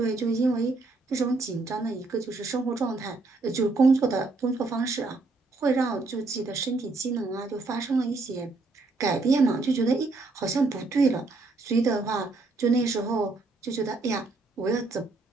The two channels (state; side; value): quieter; left; 3.5 dB